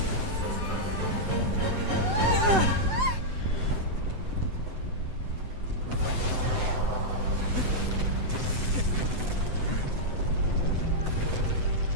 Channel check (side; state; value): left; late; 7.9 ms